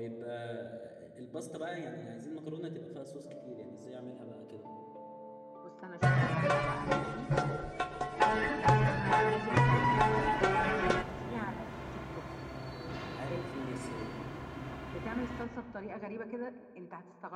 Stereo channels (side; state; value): both; identical; correlation 1.00